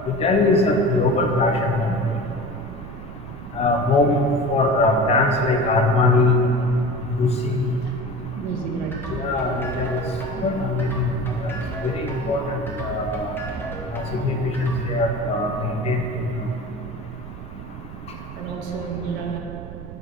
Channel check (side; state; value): right; noise; rumble, 12 dB below the sound